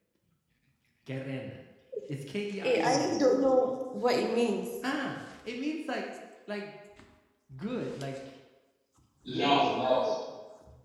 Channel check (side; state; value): both; identical; correlation 1.00